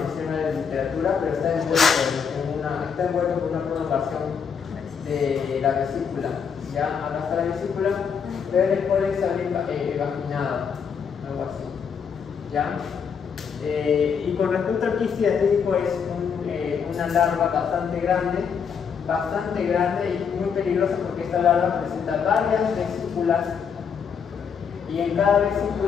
la literatura, pero está envuelto por una prolongación de la vesícula, ¿ya? Acá está la vesícula, pero el escólex sale evaginado, algo así, ¿ya? Y con respecto al quiste hidatídico, es una larva bastante grande y muy peligrosa, porque esta larva presenta varias vesículas y en cada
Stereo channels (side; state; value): right; quieter; 6.7 dB